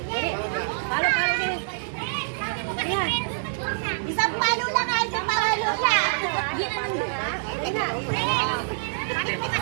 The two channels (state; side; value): silent; left; digital silence